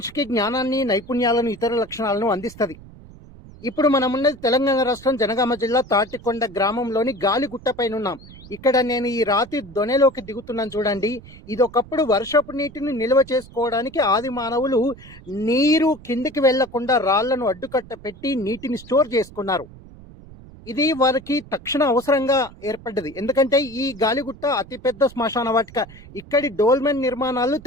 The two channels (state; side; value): noise; right; rumble, 19 dB below the sound